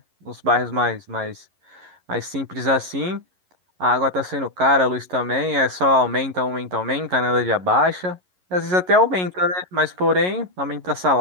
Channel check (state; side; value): late; left; 11 ms